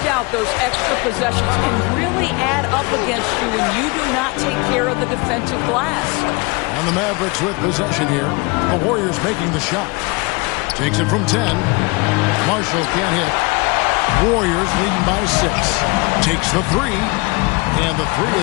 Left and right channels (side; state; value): right; quieter; 26.9 dB